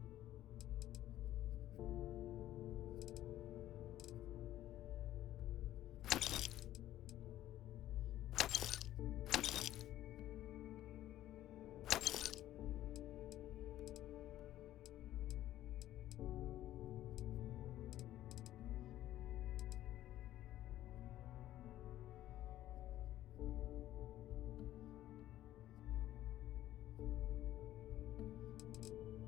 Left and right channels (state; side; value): quieter; right; 13.5 dB